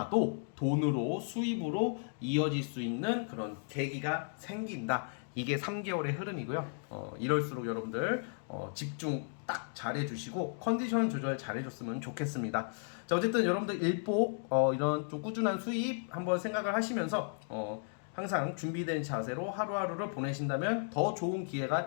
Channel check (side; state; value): right; silent; 55 dB below the other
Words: 돈으로 수입으로 이어질 수 있는 그런 계기가 생긴다. 이게 3개월의 흐름이고요. 이럴수록 여러분들 집중 딱 잘해주시고 컨디션 조절 잘해줬으면 좋겠습니다. 자 어쨌든 여러분들 일복 이런 좀 꾸준한 수입 한번 생각을 하시면서 항상 준비된 자세로 하루하루를 보내신다면 더 좋은